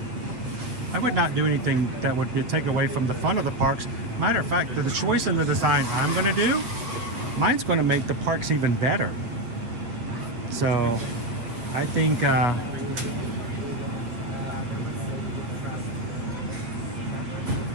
I would not do anything that would take away from the fun of the parks. Matter of fact, the choice in the design I'm going to do, mine's going to make the parks even better. So, I think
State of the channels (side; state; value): left; late; 8.3 ms